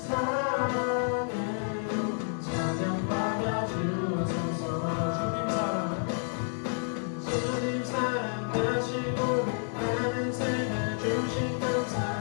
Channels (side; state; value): right; silent; 58 dB below the other